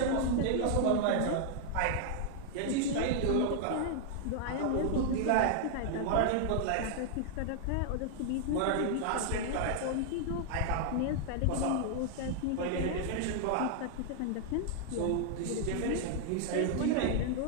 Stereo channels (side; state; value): both; different; correlation 0.00